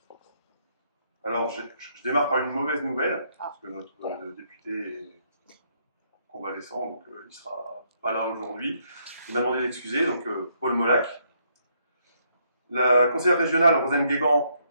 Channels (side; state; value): both; inverted; correlation -0.73